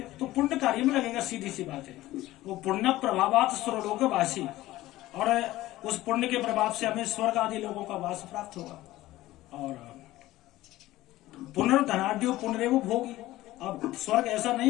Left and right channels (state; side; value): quieter; right; 16.5 dB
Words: तो पुण्य कार्य में लगेगा, सीधी सी बात है। वो पुण्य प्रभावात स्वर्लोक वासी, और उस पुण्य के प्रभाव से हमें स्वर्ग आदि लोगों का वास प्राप्त होगा। और पुनर्धनाढ्यो पुनरेव भोगी। अब स्वर्ग ऐसा